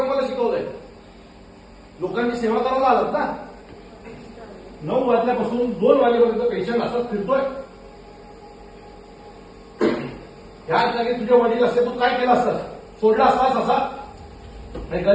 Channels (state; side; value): identical; both; correlation 1.00